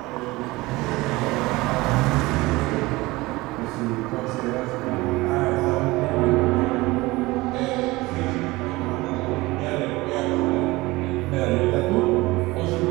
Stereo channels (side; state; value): left; quieter; 21.0 dB